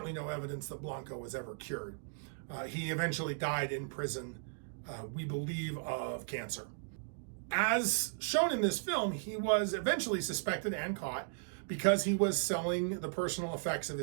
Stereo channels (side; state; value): left; silent; digital silence